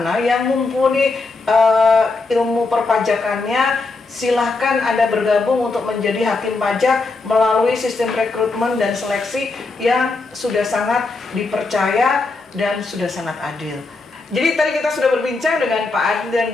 yang mumpuni ilmu perpajakannya, silahkan Anda bergabung untuk menjadi hakim pajak melalui sistem rekrutmen dan seleksi yang sudah sangat dipercaya dan sudah sangat adil. Jadi tadi kita sudah berbincang dengan Pak Adi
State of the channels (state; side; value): quieter; right; 3.7 dB